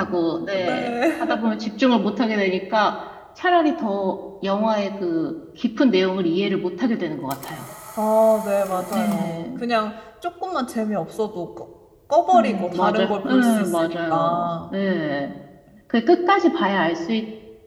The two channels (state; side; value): identical; both; correlation 1.00